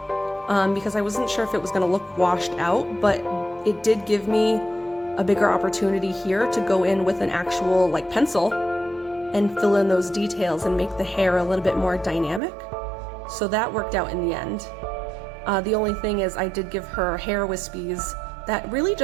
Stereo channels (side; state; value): left; drops out; at 12.4 s